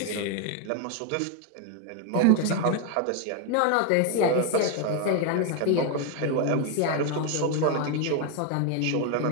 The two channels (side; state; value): both; different; correlation 0.01